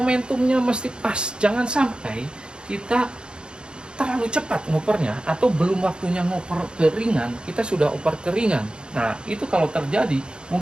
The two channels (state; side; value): late; left; 0.051 ms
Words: mesti pas. Jangan sampai kita terlalu cepat ngopernya atau belum waktunya ngoper ke ringan, kita sudah oper ke ringan. Nah, itu kalau terjadi,